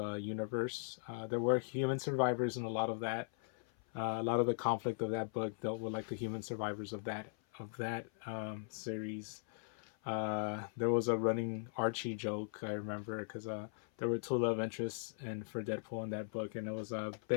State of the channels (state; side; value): silent; right; 52 dB below the other